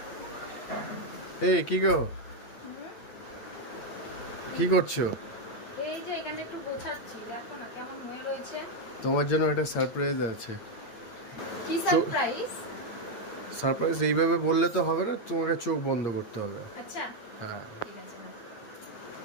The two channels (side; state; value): right; late; 8.7 ms